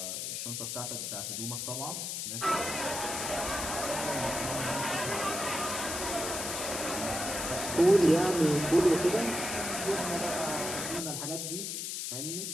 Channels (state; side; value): noise; left; hiss, 4 dB below the sound